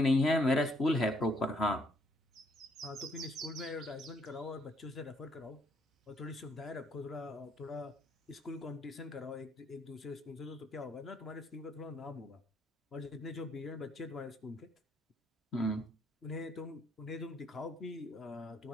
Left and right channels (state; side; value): normal; both; correlation 0.69